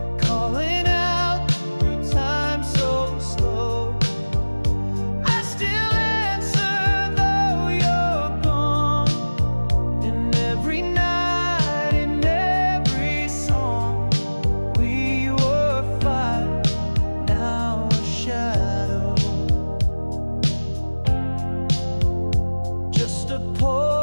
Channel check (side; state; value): both; inverted; correlation -1.00